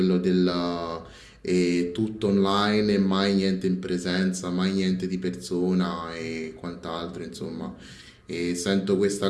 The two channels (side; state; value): both; identical; correlation 1.00